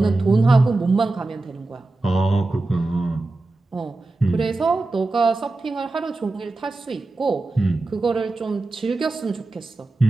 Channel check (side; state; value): left; quieter; 3.2 dB